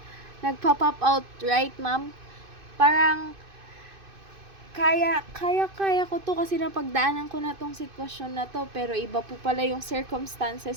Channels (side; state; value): left; late; 2.5 ms